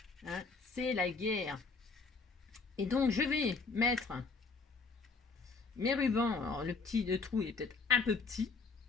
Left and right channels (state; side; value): quieter; right; 4.5 dB